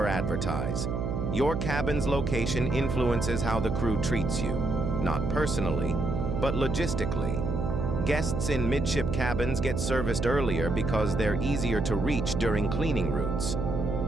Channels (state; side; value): noise; right; hum, 1 dB below the sound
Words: advertise. Your cabin's location influences how the crew treats you, not personally, but logistically. Guests in midship cabins get serviced earlier because they're easier to reach during cleaning routes.